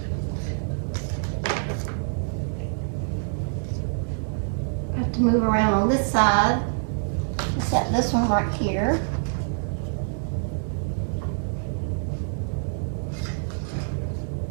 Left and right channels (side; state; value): left; silent; digital silence